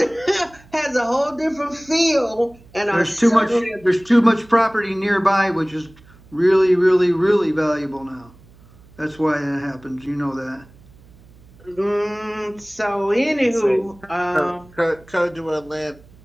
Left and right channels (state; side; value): noise; right; hum, 26 dB below the sound